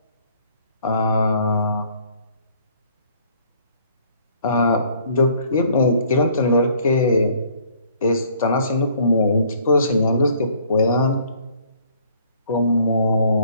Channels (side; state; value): both; inverted; correlation -0.60